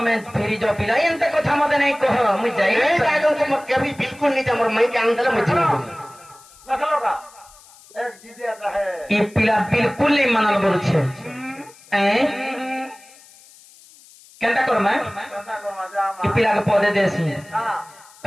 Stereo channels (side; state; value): left; noise; hiss, 24 dB below the sound